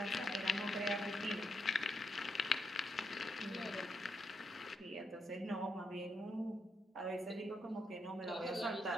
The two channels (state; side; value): normal; both; correlation 0.80